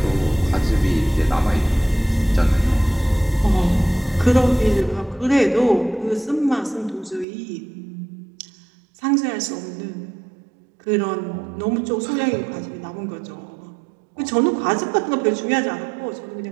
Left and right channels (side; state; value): left; drops out; at 7.2 s